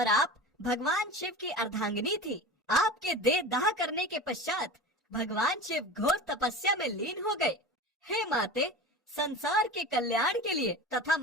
आप भगवान शिव की अर्धांगिनी थी। आपके देह दाह करने के पश्चात भगवान शिव घोर तपस्या में लीन हो गए। हे माते, संसार के कल्याण के लिए तथा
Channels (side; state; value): both; normal; correlation 0.32